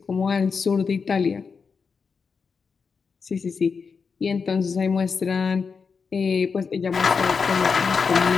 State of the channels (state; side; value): quieter; right; 5.4 dB